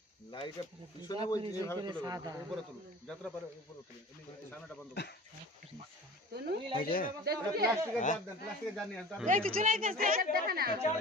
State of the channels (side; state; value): both; normal; correlation 0.41